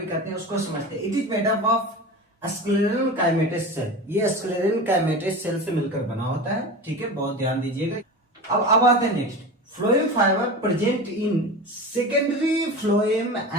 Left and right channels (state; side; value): normal; both; correlation 0.29